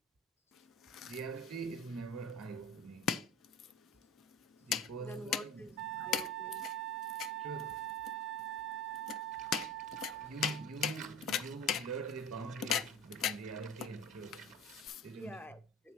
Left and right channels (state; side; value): normal; both; correlation 0.37